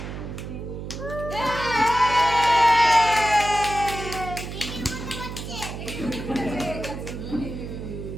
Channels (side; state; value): right; noise; hum, 8 dB below the sound